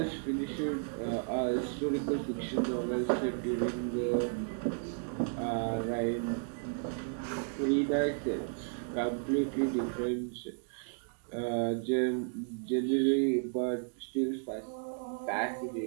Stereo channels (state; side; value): silent; left; digital silence